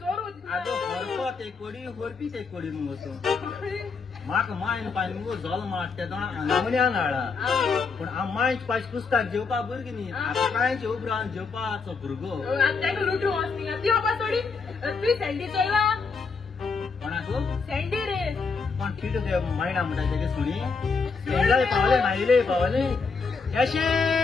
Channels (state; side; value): quieter; right; 4.9 dB